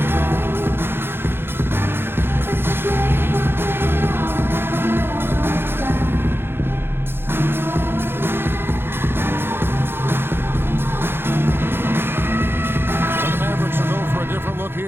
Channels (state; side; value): late; left; 0.11 ms